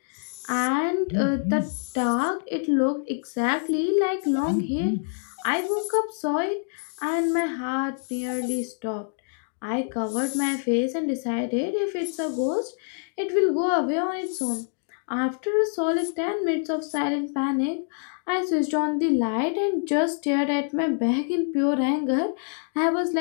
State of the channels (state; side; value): silent; right; digital silence